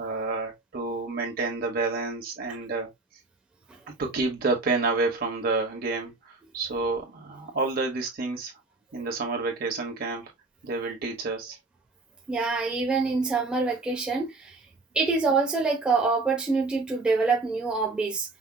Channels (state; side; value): quieter; left; 3.5 dB